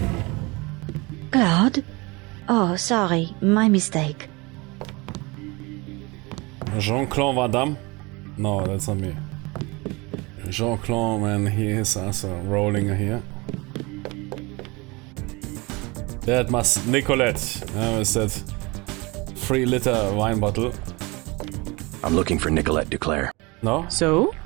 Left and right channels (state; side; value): quieter; left; 25.5 dB